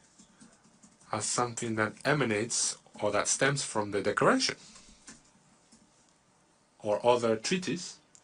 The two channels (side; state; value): both; identical; correlation 1.00